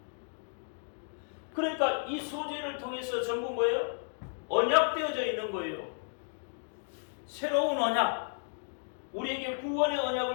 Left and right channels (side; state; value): right; silent; digital silence